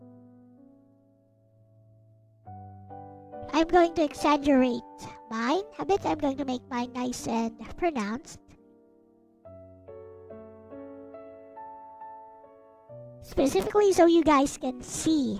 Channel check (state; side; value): identical; both; correlation 1.00